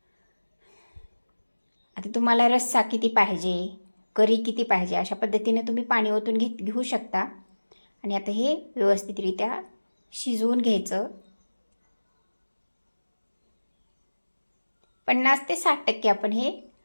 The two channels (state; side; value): inverted; both; correlation -1.00